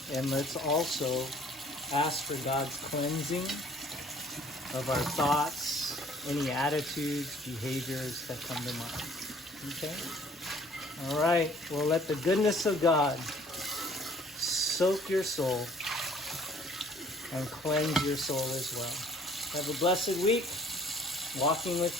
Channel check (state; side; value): normal; both; correlation 0.56